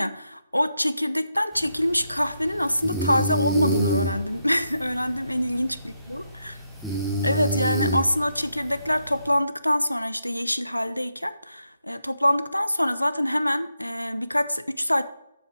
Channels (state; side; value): inverted; both; correlation -0.82